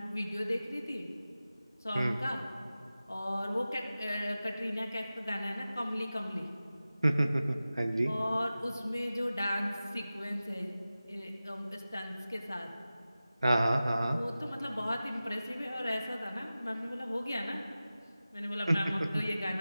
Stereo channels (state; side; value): inverted; both; correlation -0.95